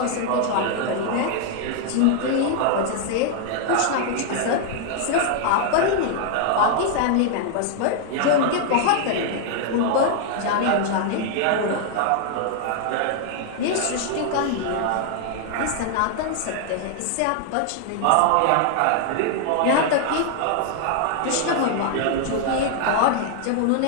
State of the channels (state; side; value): different; both; correlation 0.00